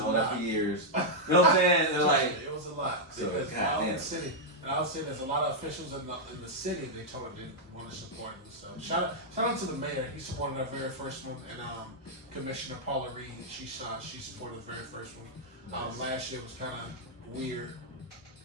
that for years. You know what I'm saying? It was a lot. So, because in the city, and I would say there's a lot of officials in the city they told them didn't want to support him. So shout out to the mayor. He supported our very first one, and Commissioner Paula Reed, she supported the very first one. Nice. Last year was kind of weird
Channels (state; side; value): normal; both; correlation -0.04